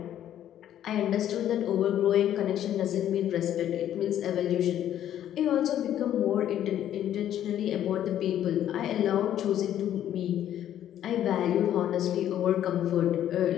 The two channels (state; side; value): quieter; right; 11.2 dB